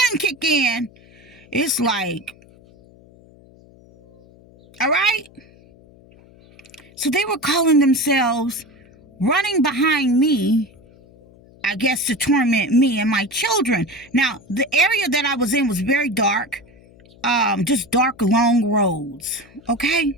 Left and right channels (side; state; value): left; noise; hum, 26 dB below the sound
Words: kick in, it's like, all right? So they were calling themselves running behind me, I guess to torment me and my children. Now, the area that I was in was very dark. Just dark, long roads.